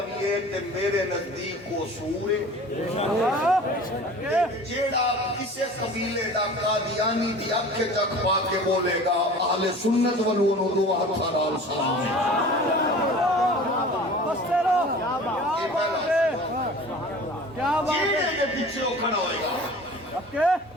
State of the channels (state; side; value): normal; both; correlation 0.41